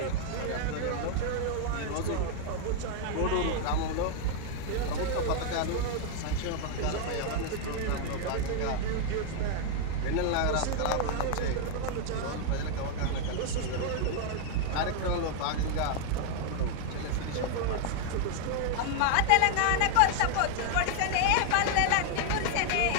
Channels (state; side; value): different; both; correlation 0.00